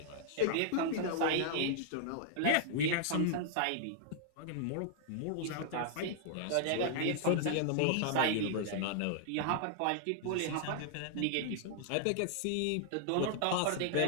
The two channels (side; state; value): both; different; correlation -0.01